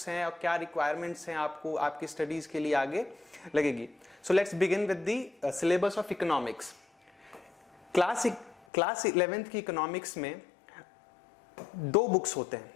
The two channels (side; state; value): right; drops out; at 8.6 s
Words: हैं और क्या रिक्वायरमेंट्स हैं आपको आपकी स्टडीज़ के लिए आगे लगेगी। So let's begin with the syllabus of economics. Class 11th की इकोनॉमिक्स में दो बुक्स होते हैं।